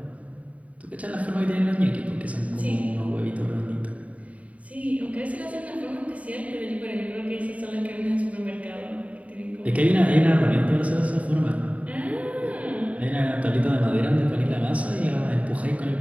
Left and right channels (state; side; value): late; left; 0.068 ms